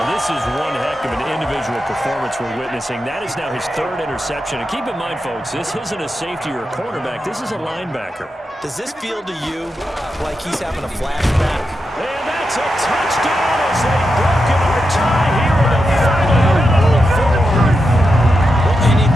This is one heck of an individual performance we're witnessing. That is now his 3rd interception. And keep in mind, folks, this isn't a safety or a cornerback. This is a linebacker. Does this feel to you like he's having a flashback? And that's a touchdown as they've broken our tie here in the final minute of the 4th. Well, any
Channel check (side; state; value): both; normal; correlation 0.87